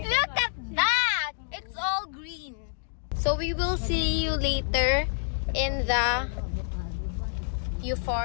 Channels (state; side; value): silent; right; digital silence